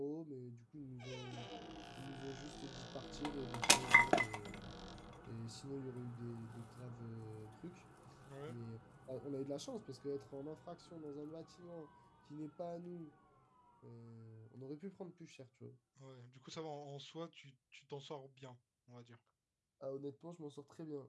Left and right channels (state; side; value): identical; both; correlation 1.00